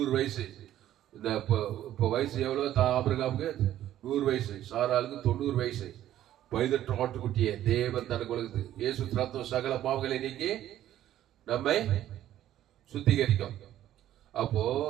வயசு. இந்த இப்ப வயசு எவ்வளவு? ஆபிரகாமுக்கு 100 வயசு, சாராளுக்கு 90 வயசு. பைதற்ற ஆட்டுக்குட்டிய தேவன் தனக்கு உலகத்து இயேசு ரத்தம் சகல பாவங்களை நீக்கி நம்மை சுத்திகரிக்கும். அப்போ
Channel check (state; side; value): quieter; left; 12.5 dB